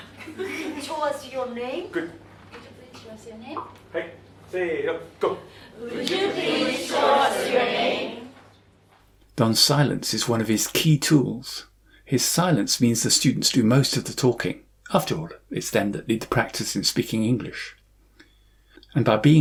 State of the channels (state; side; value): identical; both; correlation 1.00